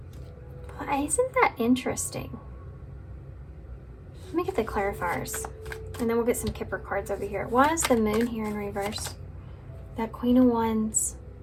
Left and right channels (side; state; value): both; identical; correlation 1.00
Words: Well, isn't that interesting? Let me get the clarifiers, and then we'll get some Kipper cards over here. Why is the moon here in reverse? That Queen of Wands.